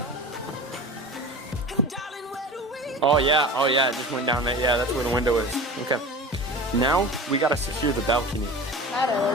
Oh yeah, it just went down there. Yeah, that's where the window is. Okay. Now, we gotta secure the balcony. That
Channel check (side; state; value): both; normal; correlation 0.34